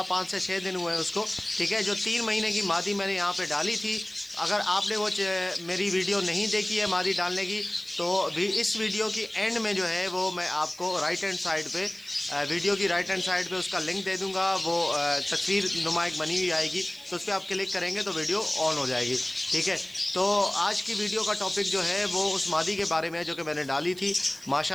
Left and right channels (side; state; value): right; noise; hiss, 23 dB below the sound